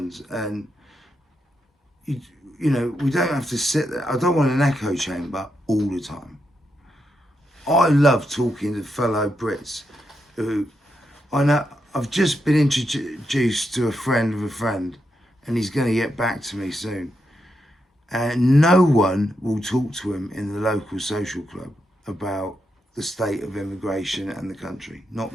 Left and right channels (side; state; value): both; normal; correlation 0.83